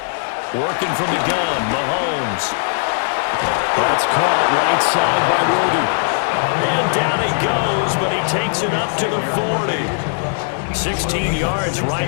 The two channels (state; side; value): silent; right; digital silence